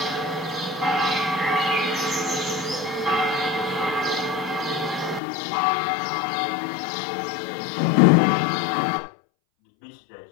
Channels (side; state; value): right; drops out; at 5.2 s